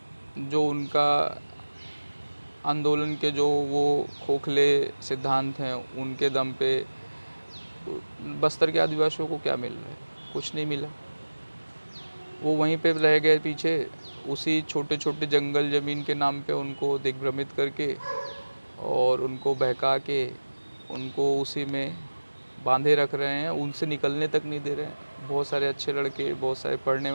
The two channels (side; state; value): both; inverted; correlation -1.00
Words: जो उनका आंदोलन के जो वो खोखले सिद्धांत हैं उनके दम पे बस्तर के आदिवासियों को क्या मिल रहा है? कुछ नहीं मिला। वो वहीं पे रह गए पीछे, उसी छोटे छोटे जंगल ज़मीन के नाम पे उनको दिग्भ्रमित करके और उनको बहका के उनको उसी में बांधे रख रहे हैं, उनसे निकलने तक नहीं दे रहे हैं। बहुत सारे अच्छे लड़के, बहुत सारे पढ़ने